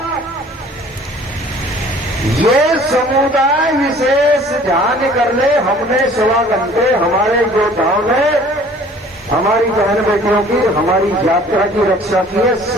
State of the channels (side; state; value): both; normal; correlation 0.51